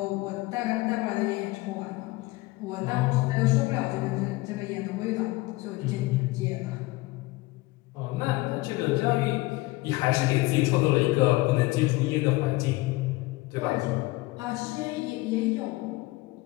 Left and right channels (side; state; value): right; quieter; 21.0 dB